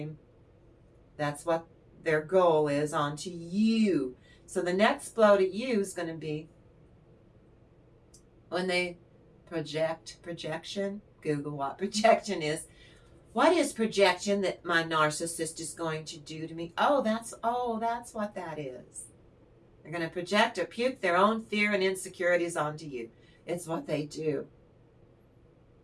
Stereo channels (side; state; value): both; identical; correlation 1.00